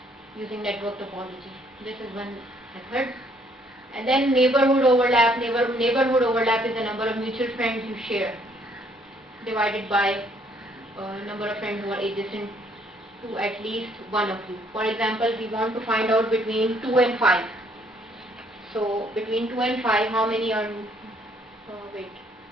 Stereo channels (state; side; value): normal; both; correlation 0.65